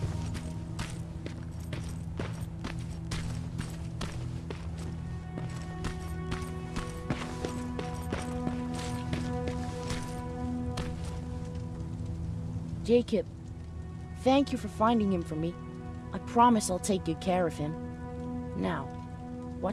Jacob, thank you for finding him for me. I promise I'll take good care of him. Now,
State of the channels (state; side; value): identical; both; correlation 1.00